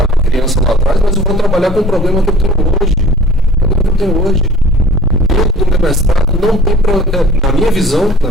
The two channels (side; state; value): both; normal; correlation 0.48